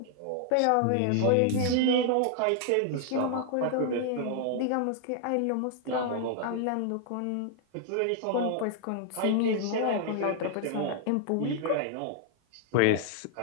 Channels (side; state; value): both; different; correlation -0.01